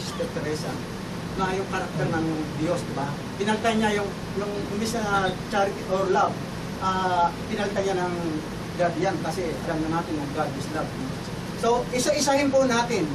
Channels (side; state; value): both; identical; correlation 1.00